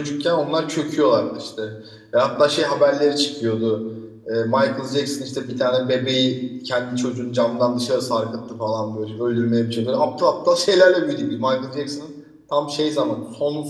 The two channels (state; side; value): identical; both; correlation 1.00